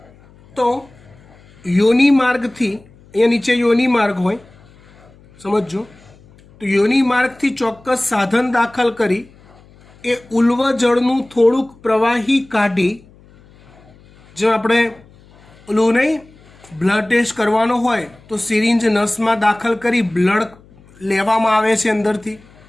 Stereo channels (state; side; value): noise; left; hum, 27 dB below the sound